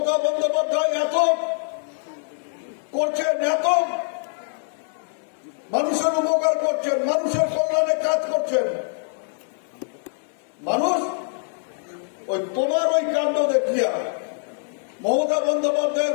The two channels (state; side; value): silent; right; digital silence